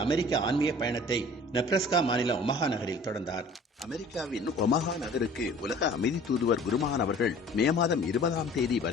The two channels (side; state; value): both; normal; correlation 0.48